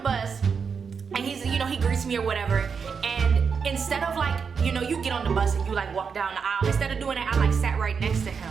and he's, he greets me or whatever. And instead of like, you get on the bus and you like walk down the aisle, instead of doing that, I like sat right next to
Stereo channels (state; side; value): quieter; left; 6.0 dB